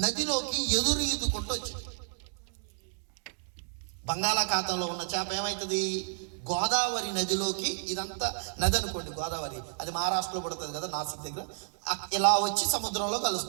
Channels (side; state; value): left; silent; digital silence